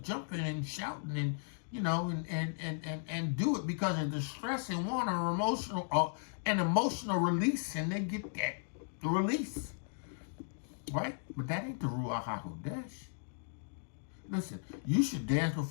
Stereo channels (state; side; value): silent; right; digital silence